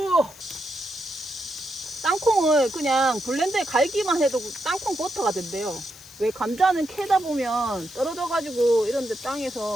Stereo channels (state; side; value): noise; left; hiss, 21 dB below the sound